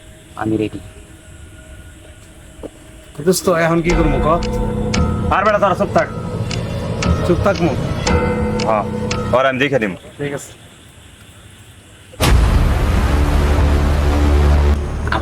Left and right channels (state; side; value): identical; both; correlation 1.00